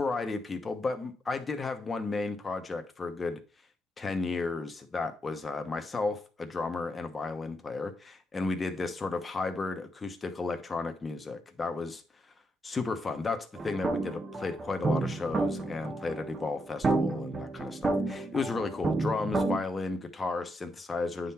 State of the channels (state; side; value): normal; both; correlation 0.82